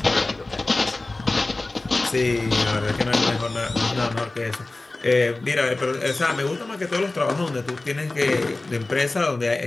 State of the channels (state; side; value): quieter; right; 3.0 dB